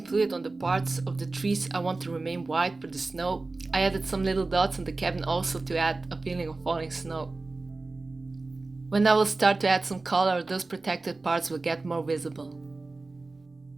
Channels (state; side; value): quieter; left; 3.4 dB